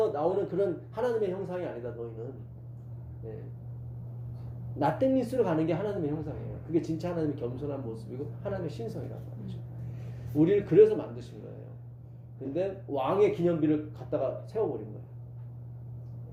나오는 그런 하나님의 형상이 아니다. 너희는 nothingness로 가는 게 하나님의 형상이에요. 그게 진짜 하나님의 겸손한 모습이고 하나님의 신성이란 말이죠. 우리를 그래서 만드신 거예요. 근데 왕의 기념비를 갖다가 세워버린 거예요.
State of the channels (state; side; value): identical; both; correlation 1.00